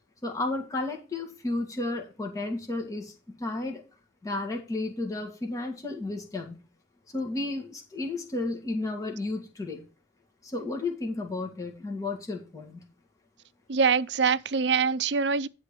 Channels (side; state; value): both; normal; correlation 0.16